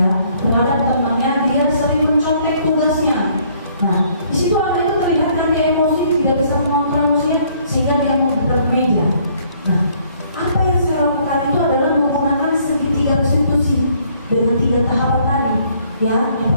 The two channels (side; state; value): both; inverted; correlation -0.63